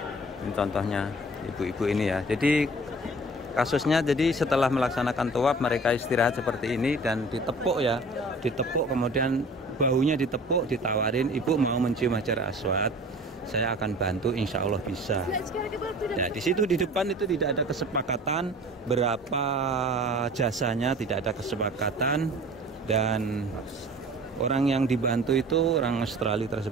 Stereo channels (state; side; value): normal; both; correlation 0.45